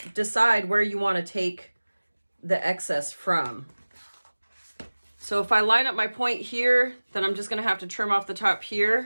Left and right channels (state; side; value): inverted; both; correlation -1.00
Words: decide where you want to take the excess from. So if I line up my point here, then I'm just going to have to trim off the top